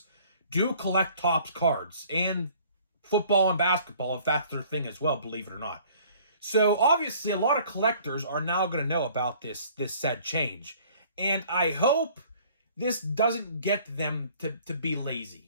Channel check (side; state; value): both; inverted; correlation -0.54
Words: do collect Topps cards, and football and basketball, if that's their thing as well, believe it or not. So obviously a lot of collectors are now going to know about this said change. And I hope this doesn't get them to be